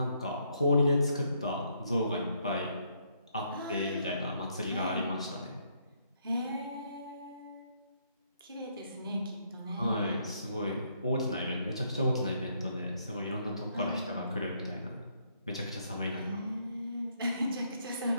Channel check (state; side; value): inverted; both; correlation -0.72